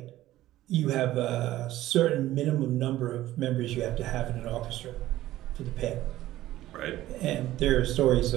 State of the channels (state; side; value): quieter; left; 15.0 dB